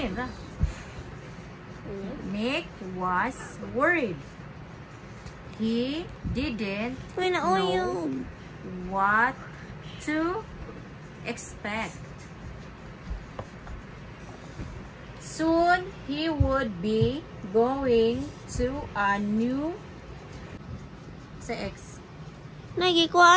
yun ba? Nick was worried. He didn't Uy, na know what to expect. Soon he would be going to a new X.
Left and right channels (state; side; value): identical; both; correlation 1.00